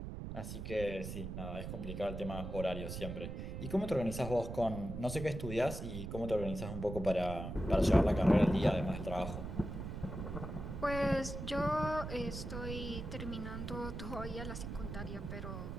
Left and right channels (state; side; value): noise; right; rumble, 6 dB below the sound